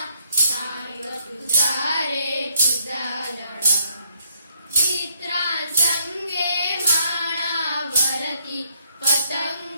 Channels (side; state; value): both; inverted; correlation -0.71